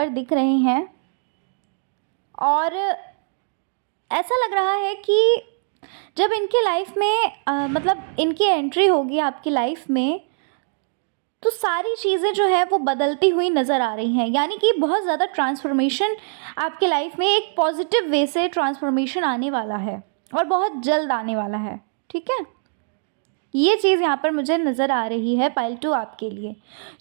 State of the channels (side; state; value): left; silent; digital silence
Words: दिख रहे हैं और ऐसा लग रहा है कि जब इनके लाइफ में मतलब इनकी एंट्री होगी आपकी लाइफ में, तो सारी चीज़ें जो है वो बदलती हुई नज़र आ रही हैं। यानी कि बहुत ज़्यादा ट्रांसफ़ॉर्मेशन आपके लाइफ में एक पॉजिटिव वे से ट्रांसफ़ॉर्मेशन आने वाला है और बहुत जल्द आने वाला है, ठीक है? ये चीज़ यहाँ पर मुझे नज़र आ रही है पाइल 2 आपके लिए।